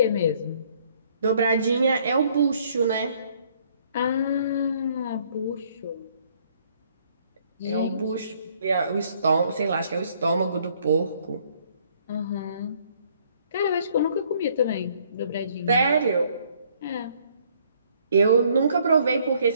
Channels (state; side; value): inverted; both; correlation -0.64